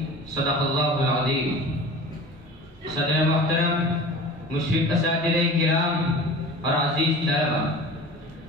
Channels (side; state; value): both; normal; correlation 0.38